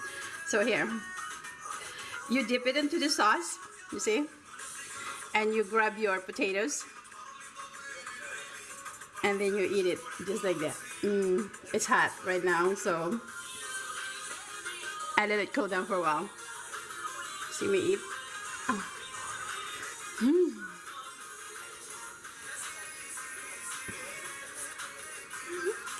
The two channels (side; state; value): both; identical; correlation 1.00